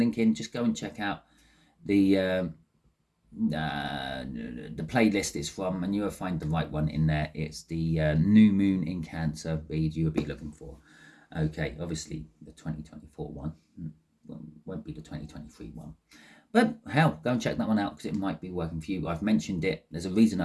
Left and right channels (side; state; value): both; identical; correlation 1.00